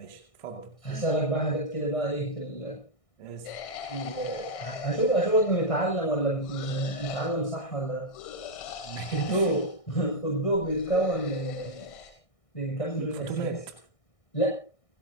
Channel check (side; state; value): right; late; 1.6 ms